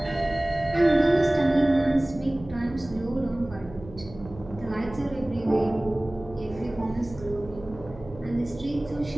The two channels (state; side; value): noise; right; hum, 17 dB below the sound